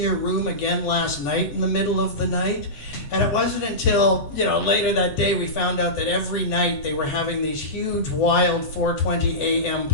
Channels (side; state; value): right; late; 7.8 ms